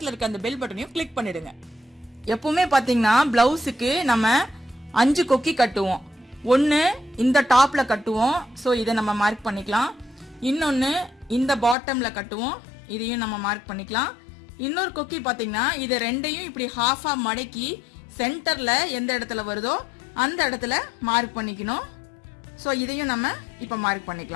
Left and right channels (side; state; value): right; drops out; at 11.8 s